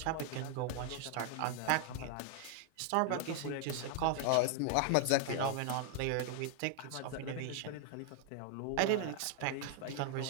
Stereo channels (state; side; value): different; both; correlation 0.00